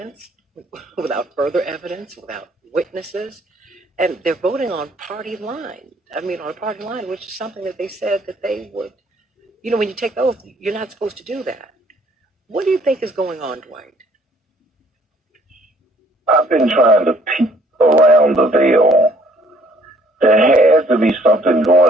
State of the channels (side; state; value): both; normal; correlation 0.61